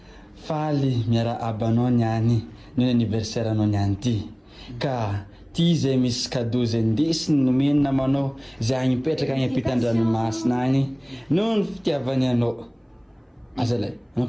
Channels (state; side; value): identical; both; correlation 1.00